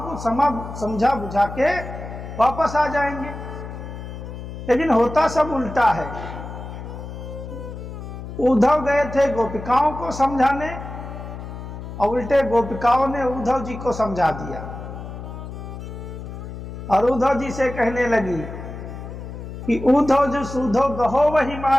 समझा बुझा के वापस आ जाएंगे। लेकिन होता सब उल्टा है। उद्धव गए थे गोपिकाओं को समझाने और उल्टे गोपिकाओं ने उद्धव जी को समझा दिया और उद्धव जी से कहने लगी कि उद्धव जो सूधो गहो वही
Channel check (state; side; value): noise; left; hum, 10 dB below the sound